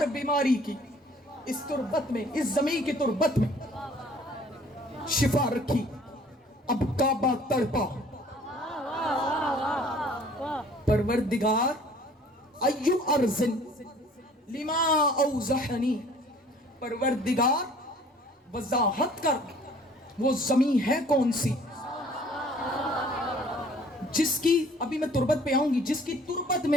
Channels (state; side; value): normal; both; correlation 0.53